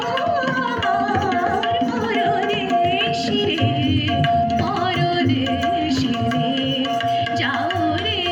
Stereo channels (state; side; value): identical; both; correlation 1.00